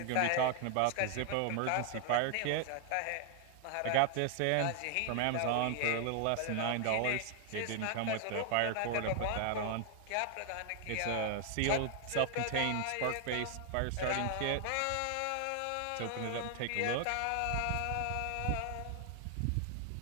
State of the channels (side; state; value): both; different; correlation 0.00